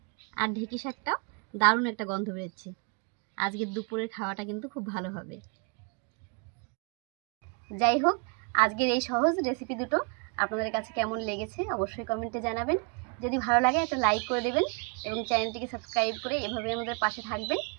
আর ঢেঁকি শাকটাও দারুণ একটা গন্ধ বেরোচ্ছে। আজকের দুপুরের খাওয়াটা কিন্তু খুব ভালো হবে। যাই হোক, আজকের এই সহজ রেসিপি দুটো আপনাদের কাছে কেমন লেগেছে অবশ্যই কমেন্টে জানাবেন। যদি ভালো লাগে একটা লাইক করে দেবেন এবং চ্যানেলটিকে সাবস্ক্রাইব করে এভাবে আমাদের পাশে থাকবেন।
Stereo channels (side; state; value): left; quieter; 35.9 dB